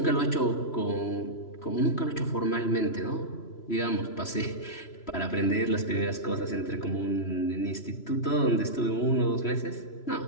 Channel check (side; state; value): right; late; 3.0 ms